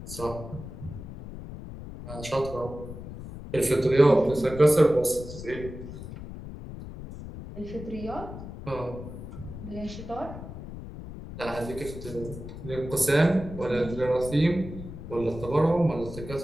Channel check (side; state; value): left; noise; rumble, 11 dB below the sound